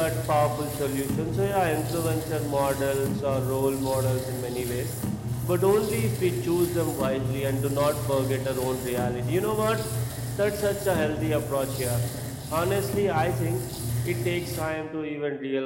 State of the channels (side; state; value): both; identical; correlation 1.00